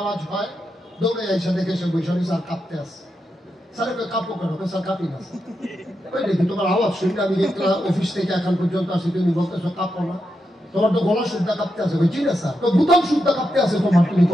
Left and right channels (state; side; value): normal; both; correlation 0.86